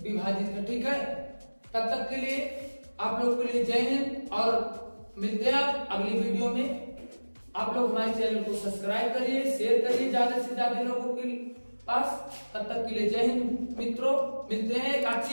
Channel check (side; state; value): both; inverted; correlation -1.00